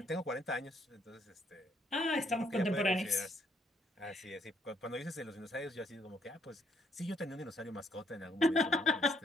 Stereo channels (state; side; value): normal; both; correlation 0.70